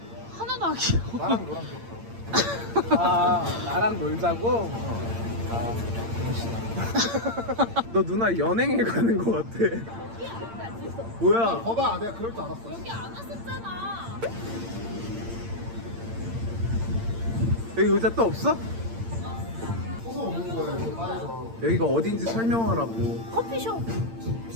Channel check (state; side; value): late; left; 8.8 ms